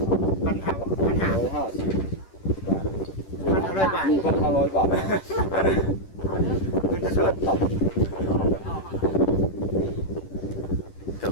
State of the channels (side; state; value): right; late; 10 ms